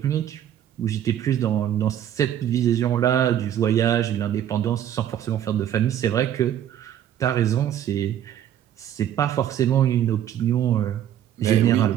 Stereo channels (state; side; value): quieter; left; 10.7 dB